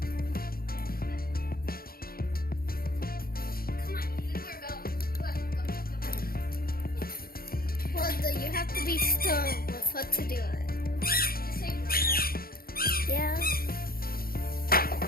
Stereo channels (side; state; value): right; late; 0.43 ms